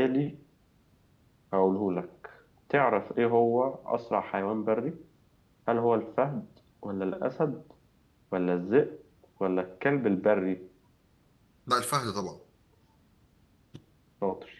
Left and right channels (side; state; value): both; identical; correlation 1.00